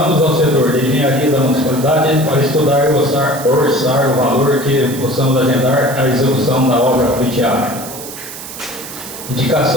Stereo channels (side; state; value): right; noise; hiss, 12 dB below the sound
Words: ao setor de engenharia da municipalidade para estudar e orçar o valor que possamos agendar a execução da obra pleiteada.